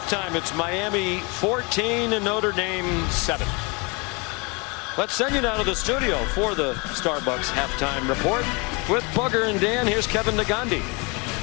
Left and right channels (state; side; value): quieter; right; 29.4 dB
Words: it's Miami 14 and Notre Dame 7. Let's send you now to the studio for the Starbucks halftime report with Bugger and Dan. Here's Kevin Nagandi.